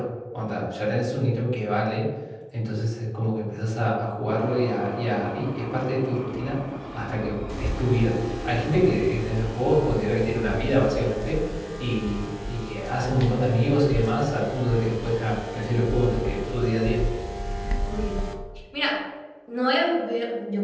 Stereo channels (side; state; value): both; identical; correlation 1.00